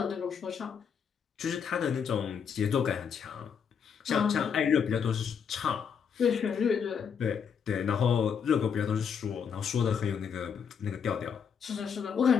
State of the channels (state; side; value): quieter; right; 7.0 dB